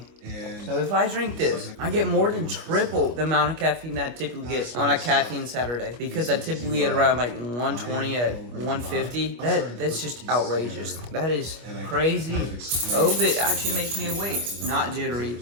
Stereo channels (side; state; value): left; late; 25 ms